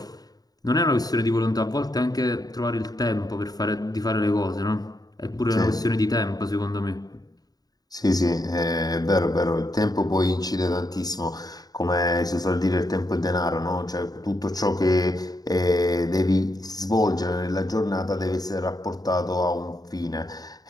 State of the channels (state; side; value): late; right; 0.18 ms